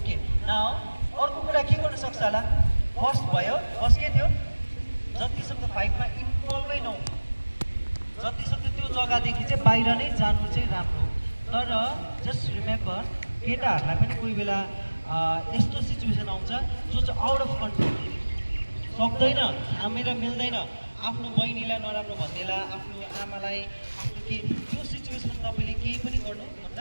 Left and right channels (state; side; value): inverted; both; correlation -1.00